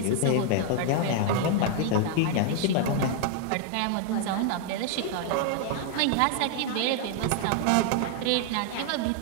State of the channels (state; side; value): different; both; correlation 0.00